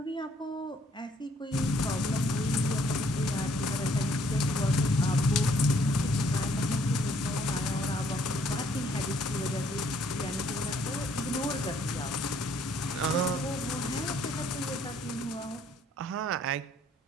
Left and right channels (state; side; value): normal; both; correlation 0.64